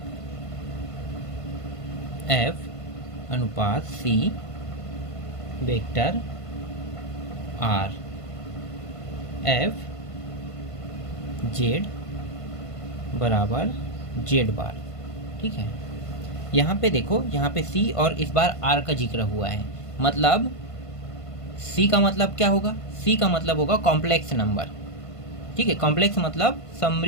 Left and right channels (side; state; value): right; late; 1.5 ms